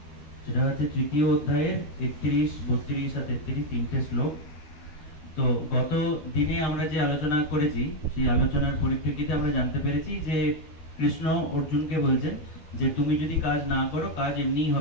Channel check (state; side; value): late; right; 12 ms